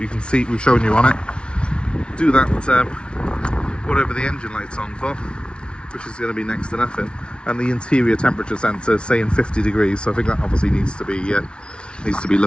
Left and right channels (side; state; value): right; late; 0.057 ms